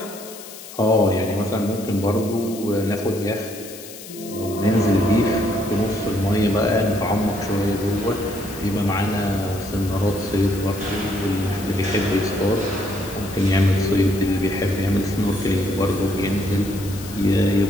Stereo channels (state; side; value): noise; left; hiss, 15 dB below the sound